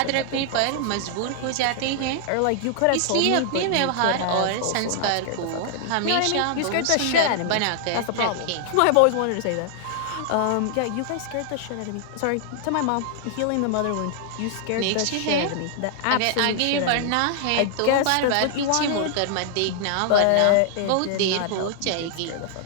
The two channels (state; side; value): different; both; correlation -0.01